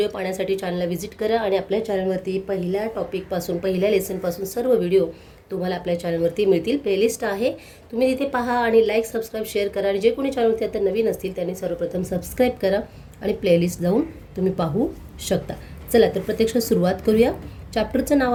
पाहण्यासाठी चॅनलला व्हिजिट करा आणि आपल्या चॅनलवरती पहिल्या टॉपिकपासून पहिल्या लेसनपासून सर्व व्हिडिओ तुम्हाला आपल्या चॅनलवरती मिळतील. प्लेलिस्ट आहे, तुम्ही तिथे पहा आणि लाईक सबस्क्राईब शेअर करा. आणि जे कोणी चॅनलवरती आता नवीन असतील त्यांनी सर्वप्रथम सबस्क्राईब करा आणि प्लेलिस्ट जाऊन तुम्ही पाहू शकता. चला तर प्रत्यक्षात सुरुवात करूया. चॅप्टरचं नाव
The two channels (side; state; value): both; identical; correlation 1.00